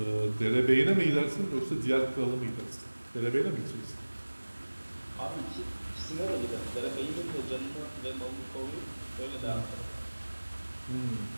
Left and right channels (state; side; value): inverted; both; correlation -1.00